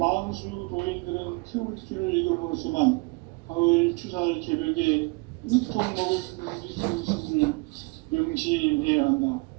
도인들은 태울주를 읽어보았지만 가을 추살 개벽에 으통먹을 넘길 수 있음을 명심해야 한다.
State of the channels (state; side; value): quieter; left; 28.5 dB